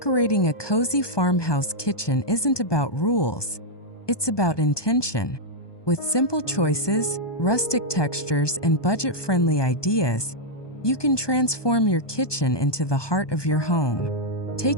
a cozy farmhouse kitchen isn't about rules, it's about intention. With simple choices, rustic textures, and budget-friendly ideas, you can transform your kitchen into the heart of your home.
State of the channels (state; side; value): late; right; 1.2 ms